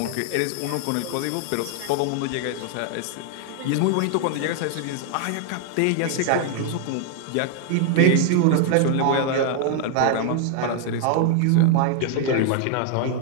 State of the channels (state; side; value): different; both; correlation 0.00